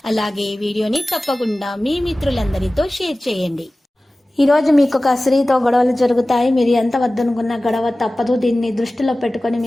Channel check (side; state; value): both; normal; correlation 0.97